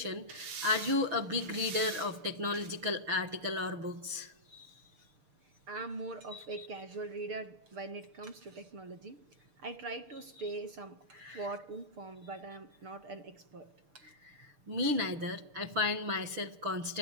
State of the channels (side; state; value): left; late; 6.7 ms